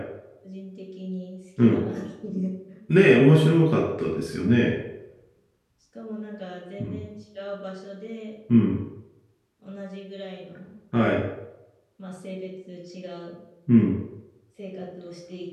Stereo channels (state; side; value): identical; both; correlation 1.00